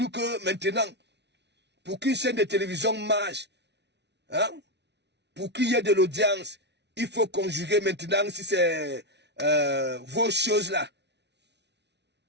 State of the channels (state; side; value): late; left; 0.50 ms